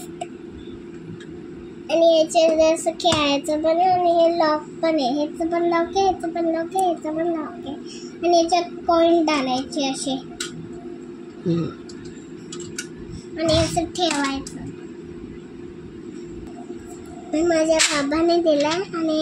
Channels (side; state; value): both; identical; correlation 1.00